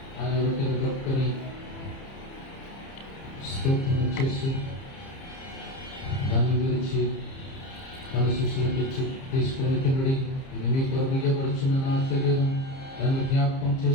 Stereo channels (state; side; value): late; right; 30 ms